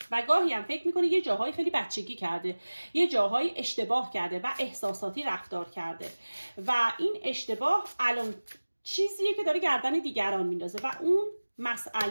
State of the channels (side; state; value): both; inverted; correlation -1.00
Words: و گاهی هم فکر میکنه یه جاهای خیلی بچگی کرده، یه جاهای اشتباه کرده و احساساتی رفتار کرده و این اشتباه الان چیزیه که داره گردن دیگران میندازه و اون